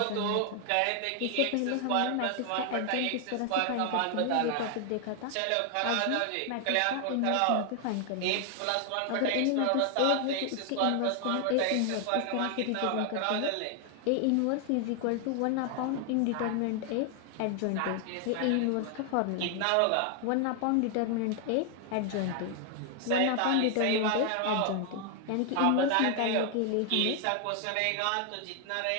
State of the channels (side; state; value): both; different; correlation 0.00